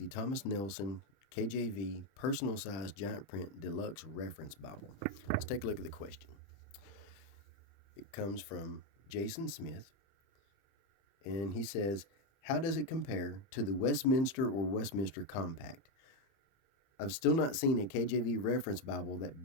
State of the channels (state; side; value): late; right; 30 ms